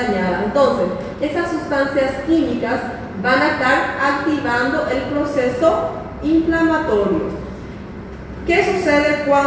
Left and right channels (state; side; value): identical; both; correlation 1.00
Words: Entonces, esas sustancias químicas van a estar activando el proceso inflamatorio. ¿Qué sucede